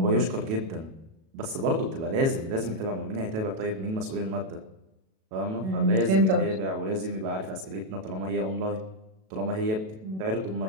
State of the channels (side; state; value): left; late; 37 ms